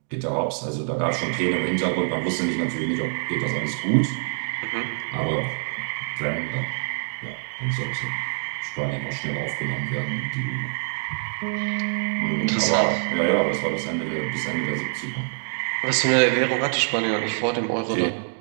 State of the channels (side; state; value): left; silent; digital silence